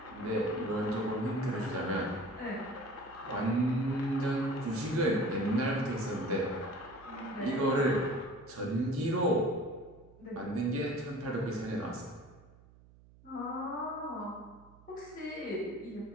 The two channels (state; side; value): noise; right; hum, 24 dB below the sound